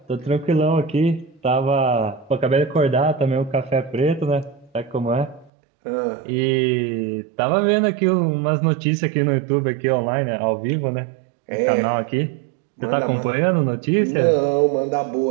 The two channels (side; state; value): left; drops out; at 5.5 s